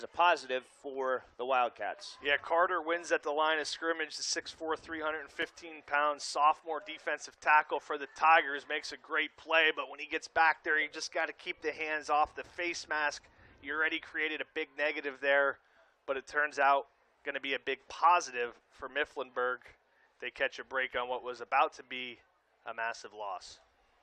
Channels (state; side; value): identical; both; correlation 1.00